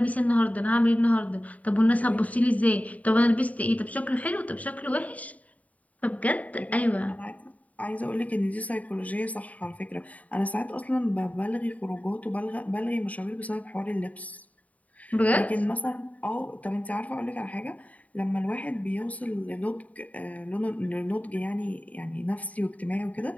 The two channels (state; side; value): late; right; 0.071 ms